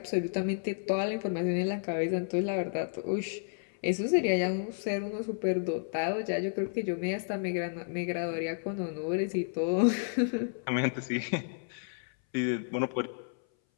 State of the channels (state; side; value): silent; right; 57 dB below the other